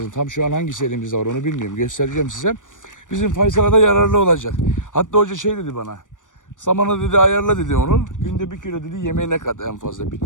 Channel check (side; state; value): right; late; 0.87 ms